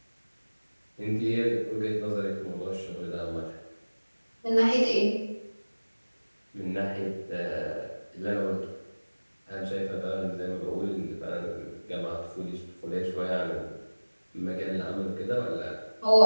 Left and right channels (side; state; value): both; inverted; correlation -1.00